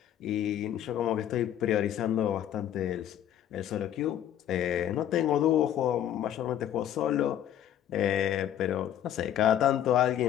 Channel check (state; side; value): quieter; right; 10.8 dB